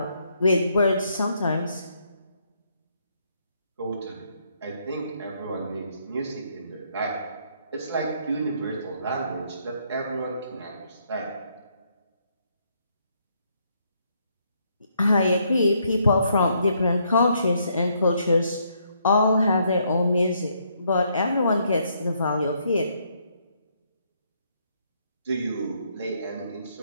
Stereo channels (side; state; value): both; inverted; correlation -0.73